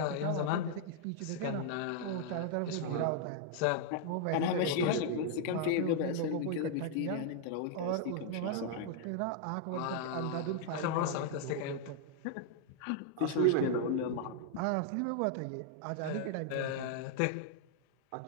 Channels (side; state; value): both; different; correlation 0.00